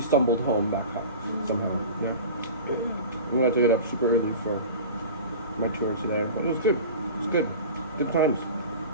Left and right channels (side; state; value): both; inverted; correlation -0.35